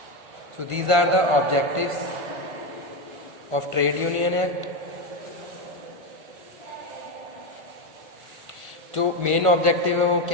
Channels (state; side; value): late; left; 1.5 ms